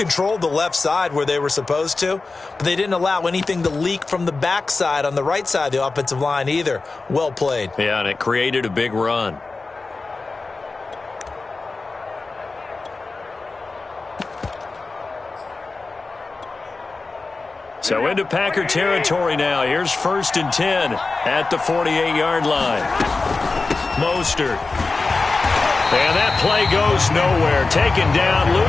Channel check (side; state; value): right; quieter; 3.8 dB